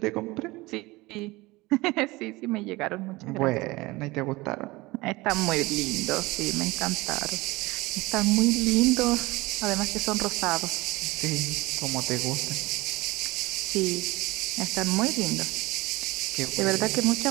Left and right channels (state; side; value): quieter; left; 21.5 dB